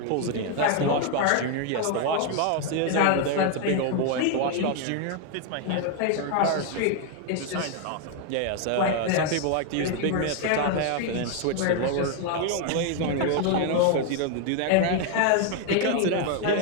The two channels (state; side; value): different; both; correlation 0.01